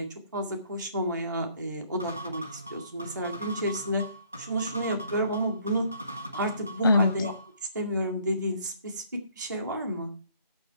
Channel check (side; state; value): both; inverted; correlation -0.62